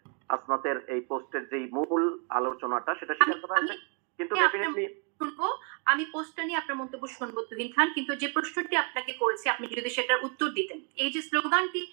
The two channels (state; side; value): quieter; left; 37.7 dB